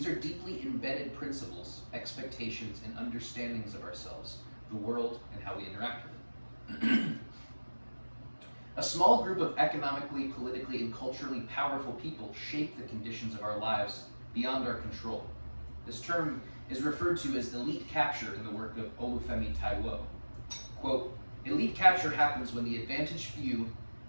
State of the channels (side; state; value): both; inverted; correlation -1.00